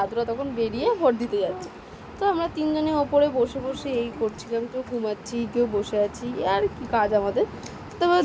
তখন বেরিয়ে ভোট দিতে যাচ্ছে। তো আমরা তিনজনে ওপরে বসে বসে এই করছিলাম, কেউ ঘুমাচ্ছি কেউ বসে আছি, আর কি কাজ আমাদের। তারপর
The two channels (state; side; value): identical; both; correlation 1.00